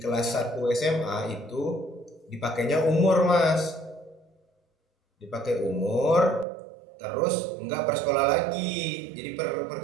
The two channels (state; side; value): drops out; left; at 6.5 s